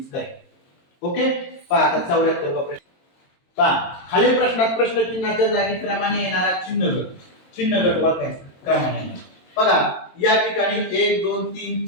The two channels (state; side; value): late; right; 22 ms